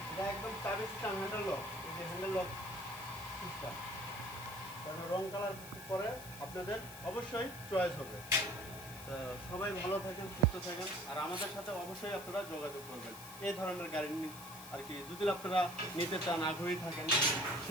এটা একদম চাবি সিস্টেম, হ্যান্ডেল লক। এই যে হ্যান্ডেল লক সিস্টেম, কারণ রং কালার পরে আপনাদের অবশ্যই চয়েস হবে। তো সবাই ভালো থাকেন, সুস্থ থাকেন, আর আমাদের সাথে অবশ্যই আপনারা যোগাযোগ করবেন এই ধরনের গাড়ি আর কি, যদি আপনারা নিতে চান, আগ্রহী থাকেন,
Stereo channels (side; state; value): left; noise; hiss, 14 dB below the sound